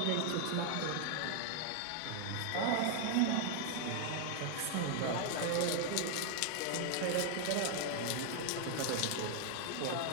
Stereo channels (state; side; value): different; both; correlation 0.00